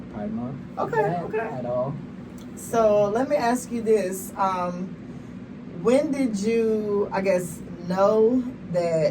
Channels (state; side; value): identical; both; correlation 1.00